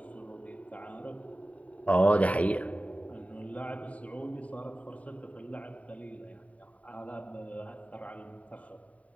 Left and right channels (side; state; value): right; late; 0.068 ms